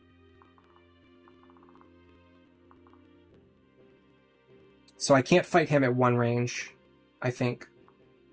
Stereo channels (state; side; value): identical; both; correlation 1.00